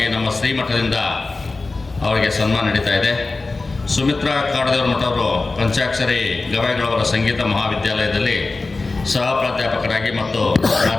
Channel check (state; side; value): quieter; right; 3.6 dB